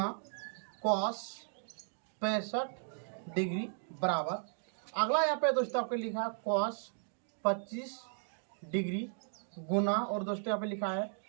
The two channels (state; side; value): silent; left; digital silence